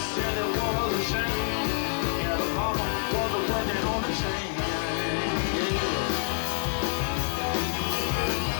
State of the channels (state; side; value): silent; right; 60 dB below the other